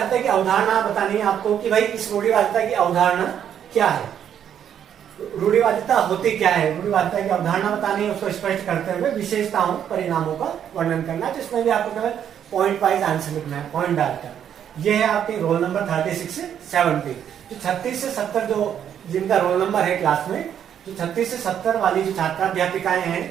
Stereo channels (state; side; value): quieter; left; 9.2 dB